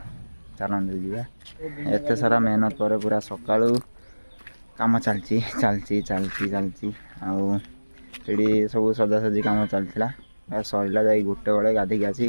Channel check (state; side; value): inverted; both; correlation -1.00